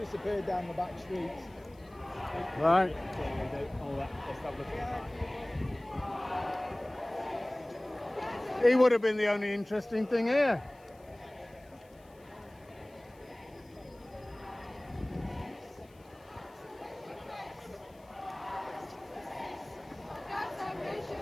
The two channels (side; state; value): left; noise; hiss, 30 dB below the sound